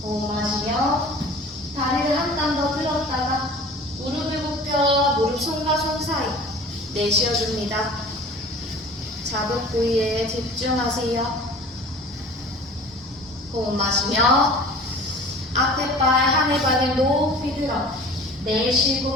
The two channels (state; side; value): normal; both; correlation 0.43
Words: 호흡 마시며 다리를 한 땀 더 들었다가 무릎을 굽혀 무릎 손과 손 사이 내쉬어줍니다. 자극 부위에 집중하세요. 호흡 마시며 앞에 발 하늘 방향 높이 들어